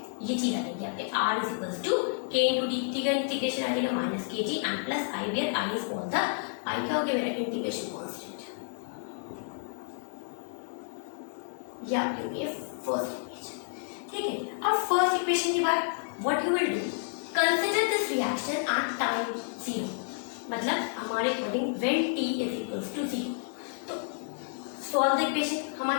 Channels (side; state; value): right; silent; digital silence